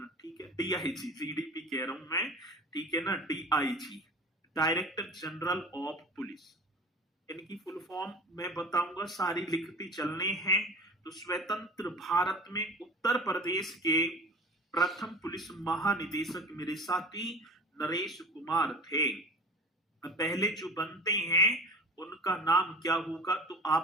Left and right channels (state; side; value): normal; both; correlation 0.37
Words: ठीक है, डीआईजी, जीडीपी कह रहा हूं मैं, ठीक है ना, DIG, director general of police. इनकी फुल फॉर्म मैं बताऊंगा, सारी लिखती चलने हैं। तो स्वतंत्र भारत में उत्तर प्रदेश के प्रथम पुलिस महानिदेशक मेरे साथी नरेश कुमार थे। पहले जो बनते हैं उनका नाम क्या होगा, तो